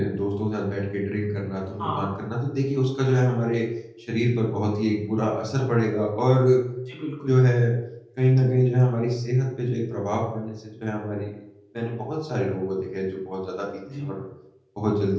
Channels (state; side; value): identical; both; correlation 1.00